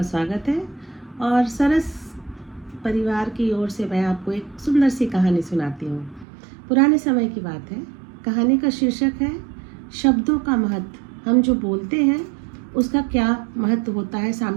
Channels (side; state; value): left; drops out; at 6.2 s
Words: स्वागत है। और सरस परिवार की ओर से मैं आपको एक सुंदर सी कहानी सुनाती हूँ। पुराने समय की बात है। कहानी का शीर्षक है शब्दों का महत्व। हम जो बोलते हैं उसका क्या महत्व होता है,